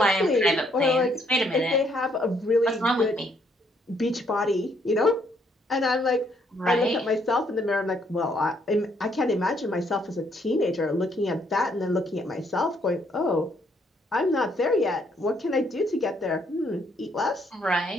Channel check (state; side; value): normal; both; correlation 0.70